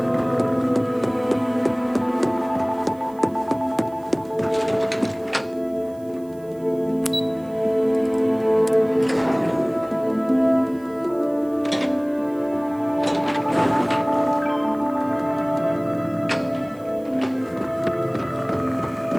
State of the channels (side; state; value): right; noise; hiss, 28 dB below the sound